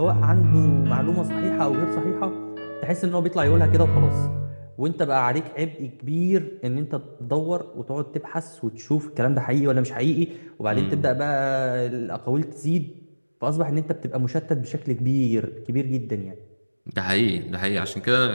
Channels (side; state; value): both; inverted; correlation -1.00